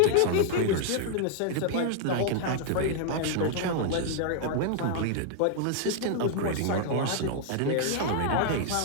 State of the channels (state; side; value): different; both; correlation 0.00